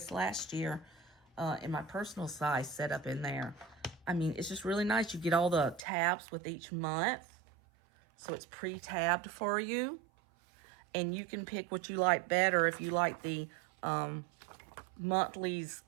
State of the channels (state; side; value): drops out; left; at 5.8 s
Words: last year in my personal size set up in there. I mean, it's just really nice. You get all the tabs with each month. So it's pre-tabbed for you. And you can pick what you like better. If you like the monthlies